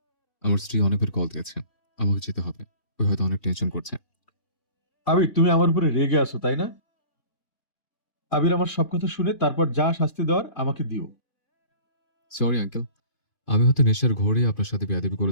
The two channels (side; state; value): right; late; 2.5 ms